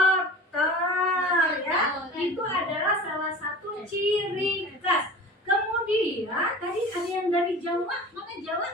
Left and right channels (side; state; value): both; normal; correlation 0.37